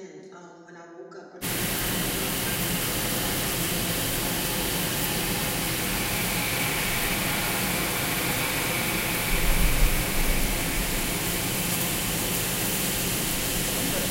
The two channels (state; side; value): identical; both; correlation 1.00